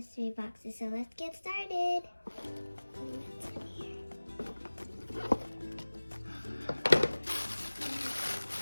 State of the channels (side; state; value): both; inverted; correlation -1.00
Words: boxes. So let's get started. What's in here?